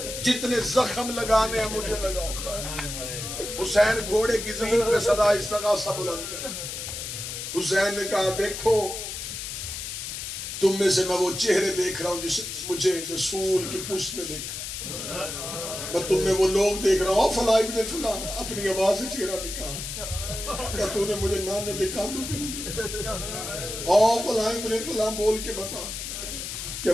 جتنے زخم لگانے ہیں مجھے لگاؤ۔ حسین گھوڑے کی زین پہ صدا استغاثہ بلند کر، حسین نے کہا دیکھو تم میں سے میں وہ چہرے دیکھ رہا ہوں جسے مجھے رسول کی پشت میں دیکھا، میں تم میں وہ لوگ دیکھ رہا ہوں، فلاں ابن فلاں، اپنی آواز سے چہرہ نکال، کیا تو نے مجھے نانے دکھا دو فلاں ابن فلاں بول کے بتا کیا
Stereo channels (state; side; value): noise; left; hiss, 6 dB below the sound